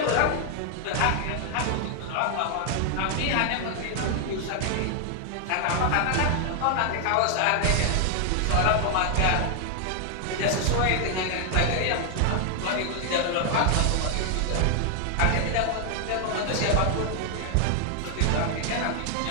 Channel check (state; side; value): different; both; correlation 0.00